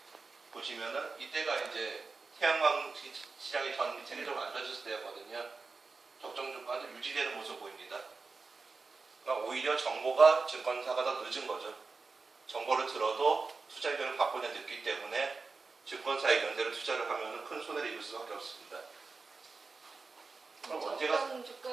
보시면은 이때가 이제 태양광 시장이 전 세계적으로 안 좋아졌을 때였거든요. 적정 주가도 유지되는 모습 보입니다. 그러니까 오히려 정보가 증권사가 더 늦은 거죠. 정보를 들어도 투자 의견을 바꾸냐 늦기 때문에 증권사 의견대로 투자를 하면 큰 손해를 입을 수밖에 없습니다. 그럼 적정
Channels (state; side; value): quieter; left; 4.2 dB